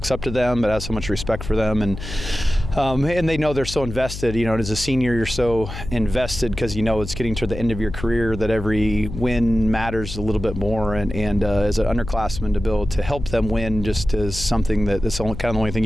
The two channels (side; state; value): left; noise; hum, 9 dB below the sound